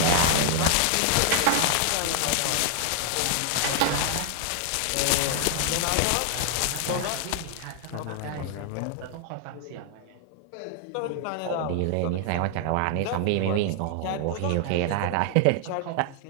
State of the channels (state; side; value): different; both; correlation 0.00